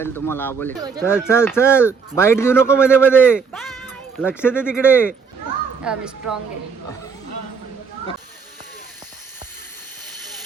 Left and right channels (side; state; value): left; quieter; 5.6 dB